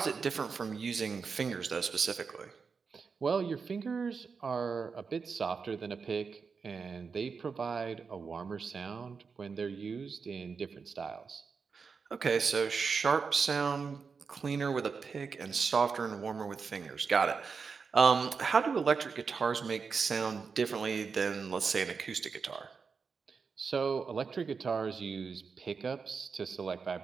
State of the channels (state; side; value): quieter; left; 5.3 dB